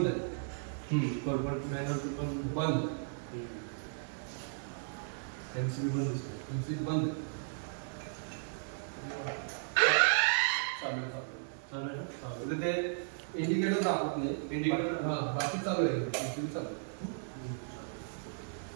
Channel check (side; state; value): left; silent; digital silence